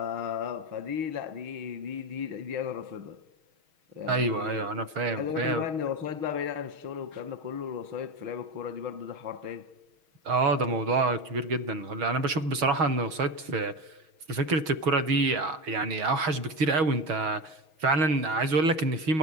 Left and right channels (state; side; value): late; left; 6.3 ms